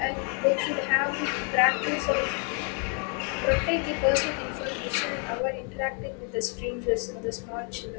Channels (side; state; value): right; quieter; 39.2 dB